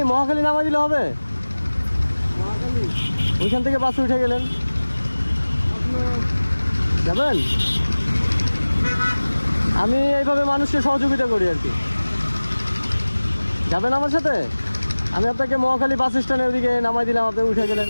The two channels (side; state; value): both; inverted; correlation -1.00